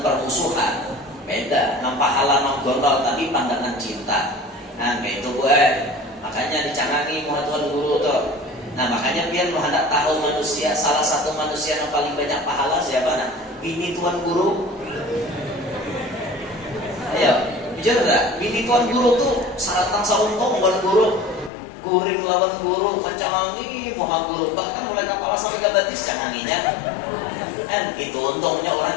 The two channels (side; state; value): right; drops out; at 21.5 s